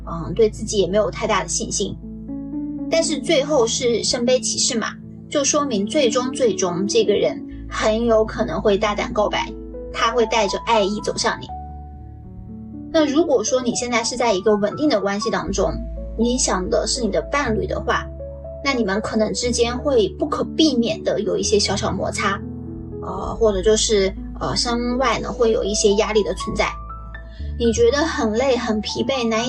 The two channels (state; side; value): identical; both; correlation 1.00